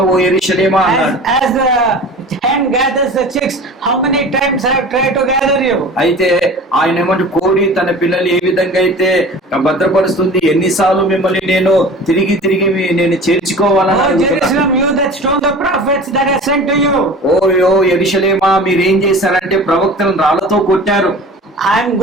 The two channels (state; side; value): normal; both; correlation 0.39